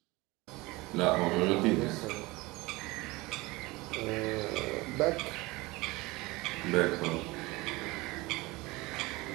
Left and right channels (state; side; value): quieter; left; 22.1 dB